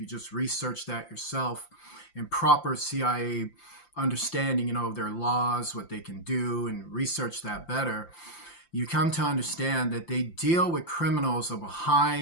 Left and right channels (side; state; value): right; late; 5.8 ms